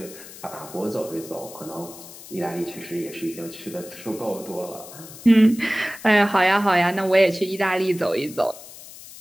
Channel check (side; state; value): left; noise; hiss, 16 dB below the sound